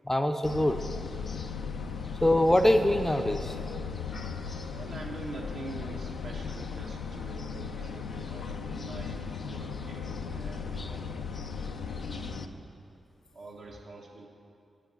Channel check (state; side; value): normal; both; correlation 0.90